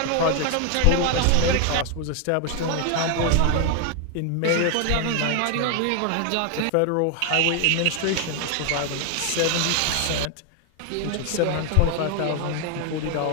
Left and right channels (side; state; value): both; different; correlation 0.01